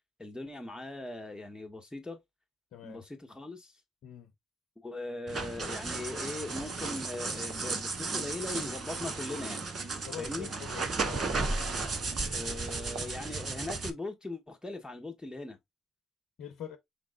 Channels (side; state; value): both; normal; correlation 0.73